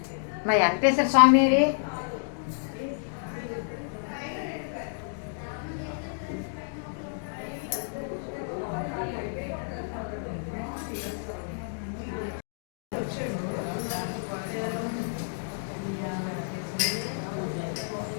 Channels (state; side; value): silent; right; digital silence